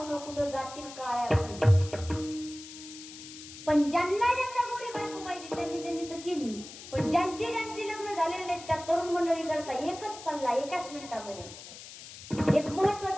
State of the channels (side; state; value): left; noise; hiss, 14 dB below the sound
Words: कुठं जातील काळ्या. पण ज्यांना ज्यांना गोरी बायको पाहिजे त्यांनी त्यांनी तर केली. पण ज्यांची लग्न झालेले नाहीत त्या तरुण मंडळी करता एकच सल्ला एकाच मिनिटामध्ये एक